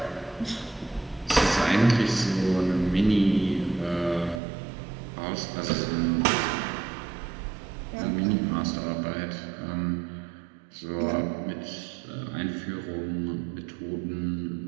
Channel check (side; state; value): left; drops out; at 4.4 s